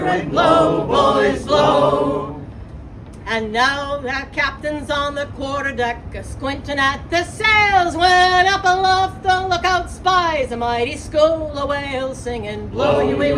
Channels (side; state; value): both; identical; correlation 1.00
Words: and blow, boys, blow. And now that captain's on the quarterdeck, squinting at the sails, when up aloft the lookout spies a mighty school of whales, singing, blow your